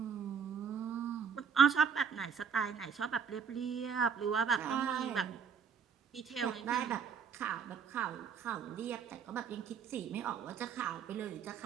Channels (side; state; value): left; quieter; 6.7 dB